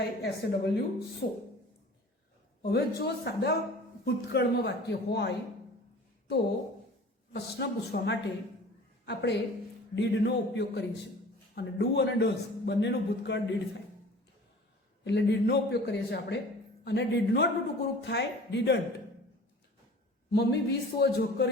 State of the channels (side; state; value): both; normal; correlation 0.44